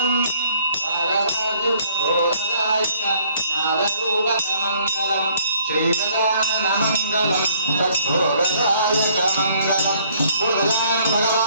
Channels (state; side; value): inverted; both; correlation -0.62